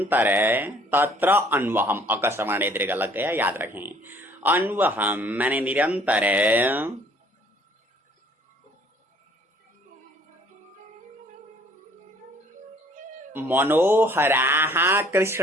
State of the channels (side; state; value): both; normal; correlation 0.58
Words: तत्र अन्वहम अकस्मणे दीर्घ लग गया, याद रखें। अन्वहम माने निरंतर, मनोहराः